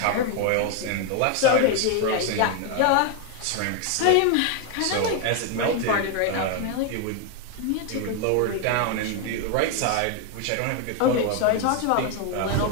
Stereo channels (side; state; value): both; different; correlation 0.01